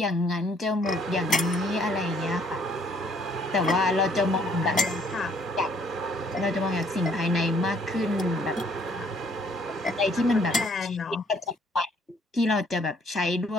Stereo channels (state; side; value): normal; both; correlation 0.63